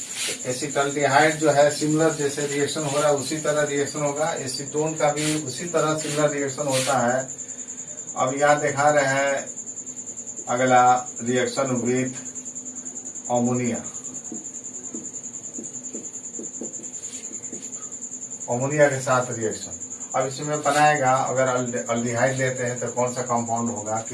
एसिटल्डिहाइड जो है सिमिलर जैसे रिएक्शन हो रहा है उसी तरह रिएक्शन होगा, एसीटोन का भी उसी तरह सिमिलर रिएक्शन होता है। अब यहाँ दिखा रहे हैं अगला रिएक्शन विथ अमोनिया के साथ रिएक्शन। अब इसमें बनाएगा, अगर अल्डिहाइड लेते हैं तो कौन सा कंपाउंड होगा,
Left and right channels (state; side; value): identical; both; correlation 1.00